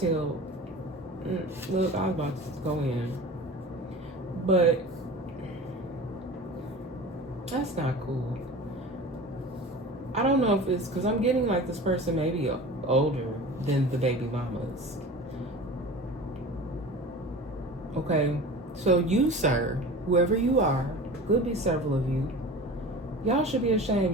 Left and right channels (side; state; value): both; normal; correlation 0.36